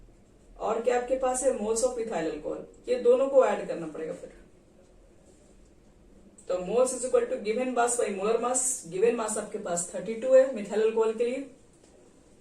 और क्या आपके पास है, मोल्स ऑफ मिथाइल अल्कोहल। ये दोनों को ऐड करना पड़ेगा फिर। तो moles is equal to given mass by molar mass. Given mass आपके पास 32 है मिथाइल अल्कोहल के लिए।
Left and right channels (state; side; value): identical; both; correlation 1.00